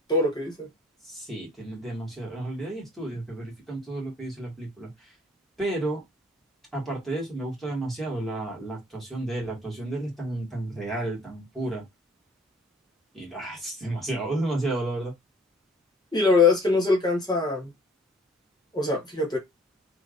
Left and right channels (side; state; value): both; normal; correlation 0.55